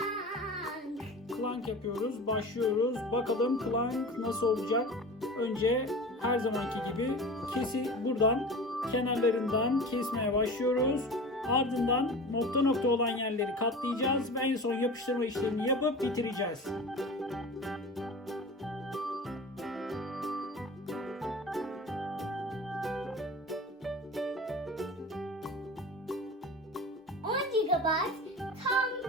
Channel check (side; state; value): both; normal; correlation 0.34